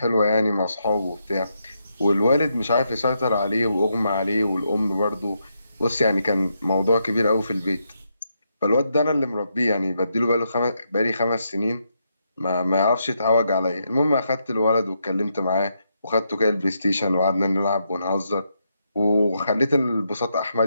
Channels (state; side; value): inverted; both; correlation -0.80